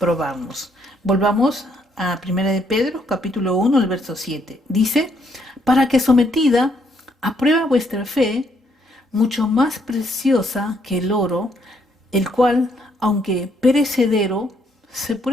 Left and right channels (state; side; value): normal; both; correlation 0.71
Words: Volvamos a 1 de Pedro, capítulo 1, el verso 7. Dice, para que sometida a prueba vuestra fe, mucho más preciosa que el oro, el cual, aunque perecedero, se